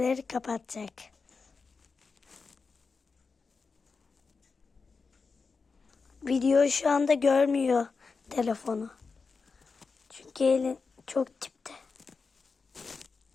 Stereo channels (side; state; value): right; quieter; 4.7 dB